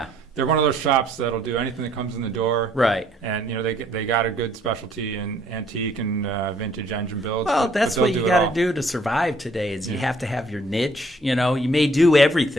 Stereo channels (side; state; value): both; normal; correlation 0.63